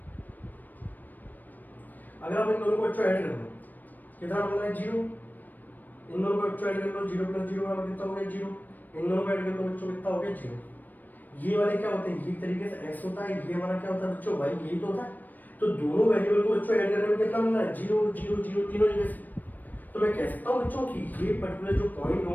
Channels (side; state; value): right; late; 0.087 ms